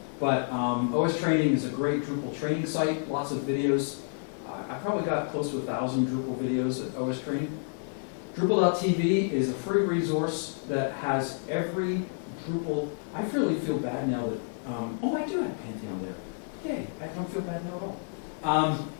But OSTraining is a great Drupal training site, lots of videos. I probably got close to 1,000 Drupal videos at OSTraining. Drupal.tv is a free resource that has every Drupal. I really feel bad now that, I do have Pantheon there. Yay, I don't feel bad now at all.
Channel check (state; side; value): silent; right; digital silence